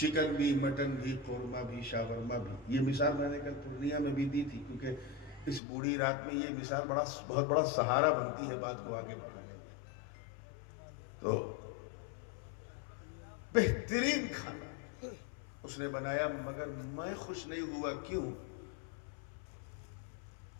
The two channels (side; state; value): right; drops out; at 5.6 s